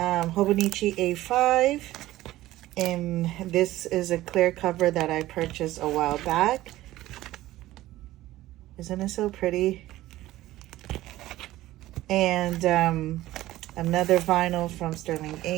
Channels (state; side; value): quieter; left; 15.9 dB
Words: A5. And this is a clear cover that I purchased a while back. Isn't it so pretty? And another vinyl from Sterling